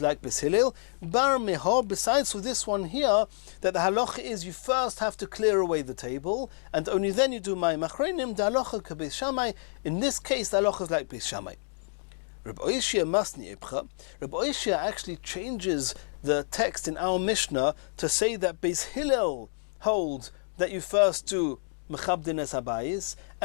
like Beis Hillel. Bar meha, besides for this one here, that the halacha is you first have to clear away the table, and only then you do mayim achronim. The halacha ke Beis Shammai. In this case, the halacha is like Beis Shammai. Rabbi Oishia masni epcha. Rabbi Oishia actually changes the text in our Mishnah to say that Beis Hillel holds that you first do mechabdin es habayis,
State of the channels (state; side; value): silent; right; digital silence